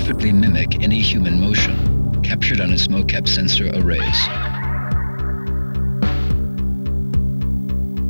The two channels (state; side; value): inverted; both; correlation -1.00